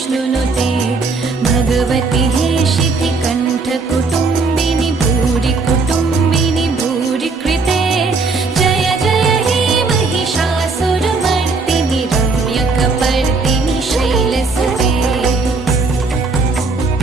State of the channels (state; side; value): quieter; left; 4.0 dB